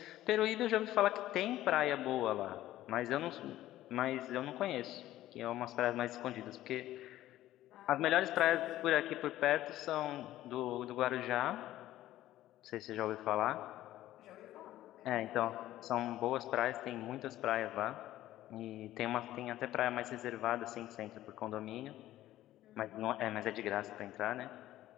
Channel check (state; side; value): quieter; right; 14.3 dB